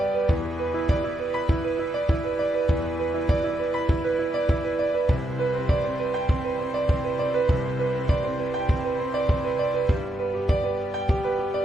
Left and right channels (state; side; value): normal; both; correlation 0.81